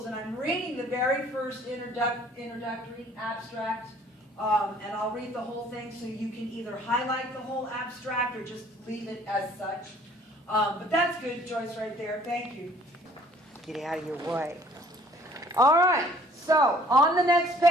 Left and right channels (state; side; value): normal; both; correlation 0.56